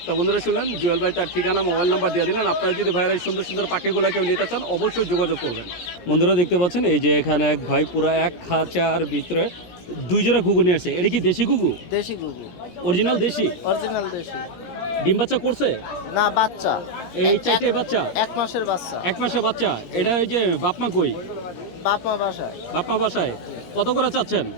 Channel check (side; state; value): right; late; 17 ms